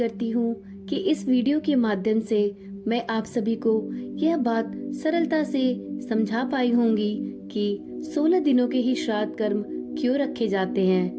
हूँ कि इस वीडियो के माध्यम से मैं आप सभी को यह बात सरलता से समझा पाई होंगी कि 16 दिनों के ही श्राद्ध कर्म क्यों रखे जाते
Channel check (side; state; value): both; identical; correlation 1.00